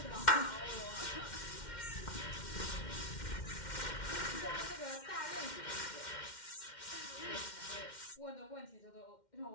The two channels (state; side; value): late; right; 2.1 ms